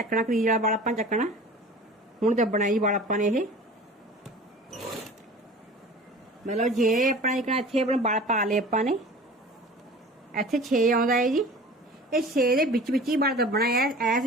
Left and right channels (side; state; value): both; normal; correlation 0.41